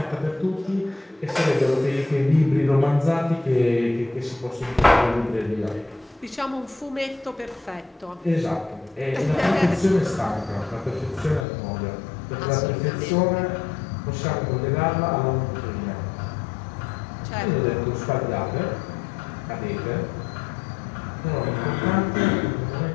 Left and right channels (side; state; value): right; drops out; at 11.5 s